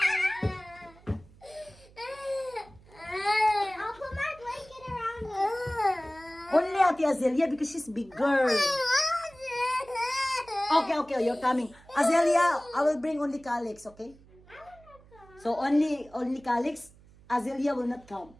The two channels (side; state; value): right; noise; hum, 25 dB below the sound